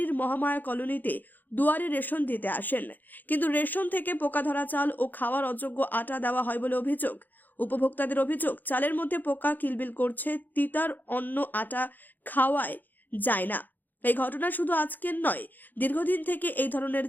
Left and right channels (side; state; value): right; late; 0.086 ms